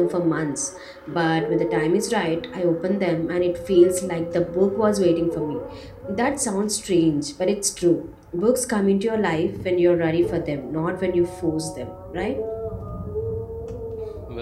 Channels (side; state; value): both; identical; correlation 1.00